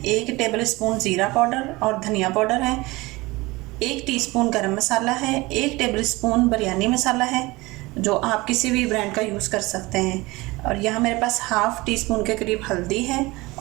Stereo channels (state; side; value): quieter; left; 21.9 dB